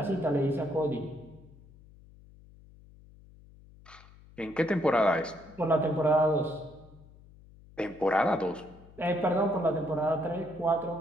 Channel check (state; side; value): noise; left; hum, 23 dB below the sound